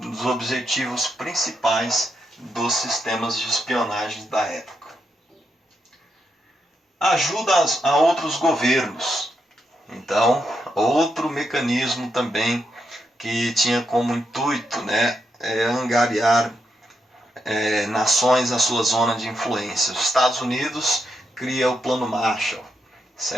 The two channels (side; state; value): both; normal; correlation 0.82